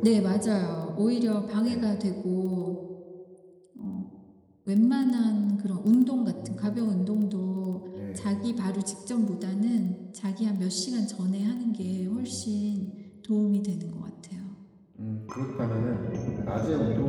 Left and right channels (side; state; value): both; identical; correlation 1.00